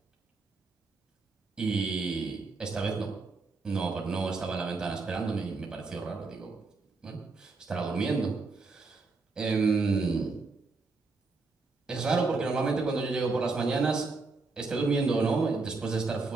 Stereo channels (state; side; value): quieter; left; 3.9 dB